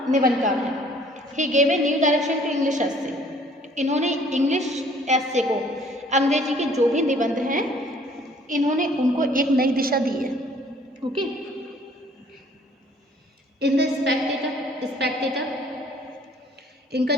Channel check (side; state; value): both; normal; correlation 0.57